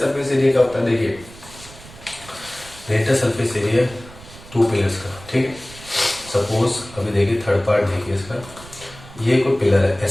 एरिया क्या होता है? देखिए लेटर सरफेस एरिया 2 पिलर्स का, ठीक है। सपोज अभी देखिए थर्ड पार्ट देखिए इसका, ये कोई पिलर है,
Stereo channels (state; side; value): noise; right; rumble, 19 dB below the sound